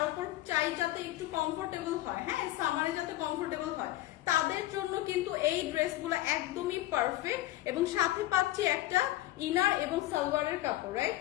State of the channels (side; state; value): right; quieter; 15.6 dB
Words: উপর চাই যাতে একটু কমফোর্টেবল হয়। হ্যাঁ, সামারে যাতে কমফোর্টেবল হয়, তাদের জন্য কিন্তু এই ড্রেসগুলো একদমই পারফেক্ট এবং সাথে পাচ্ছি একটা ইনার এবং সালোয়ারের কাপড়, রাইট?